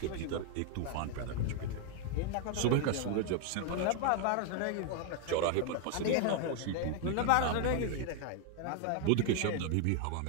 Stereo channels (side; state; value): both; different; correlation 0.00